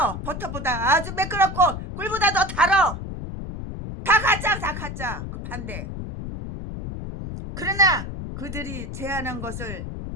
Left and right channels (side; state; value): left; noise; rumble, 7 dB below the sound